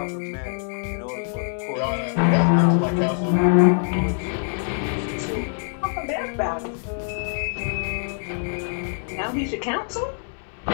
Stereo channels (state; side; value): silent; right; 62 dB below the other